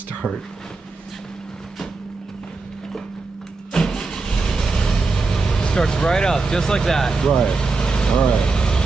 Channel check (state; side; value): quieter; left; 3.9 dB